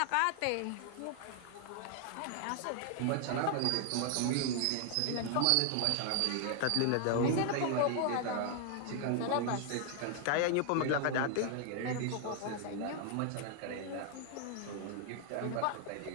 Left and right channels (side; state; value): both; different; correlation 0.00